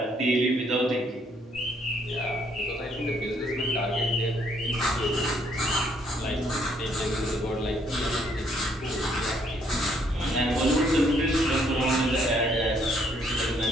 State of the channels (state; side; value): normal; both; correlation 0.68